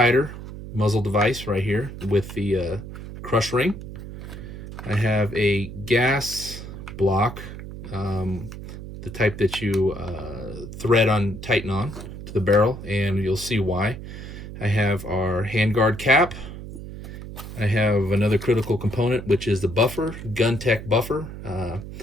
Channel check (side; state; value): right; noise; hum, 11 dB below the sound